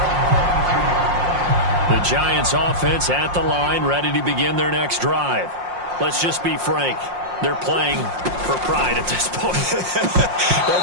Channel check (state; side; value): late; left; 5.6 ms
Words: The Giants offense at the line, ready to begin their next drive. Let's just be frank. They're playing for pride at this point.